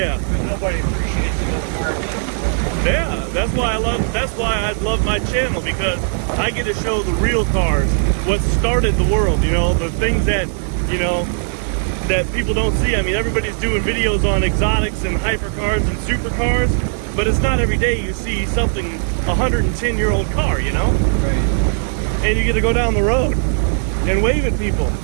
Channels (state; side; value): silent; left; digital silence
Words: Because nobody appreciates the old cars. Yeah, that's why I love my channel, because I get to show the real cars, what started the world, you know, the things that, you know, that people don't see. I mean, everybody's doing videos on exotics and hypercars and supercars, but it's not every day you see something, 110-year-old car, you know? Right. And you get to go down the road and wave at people.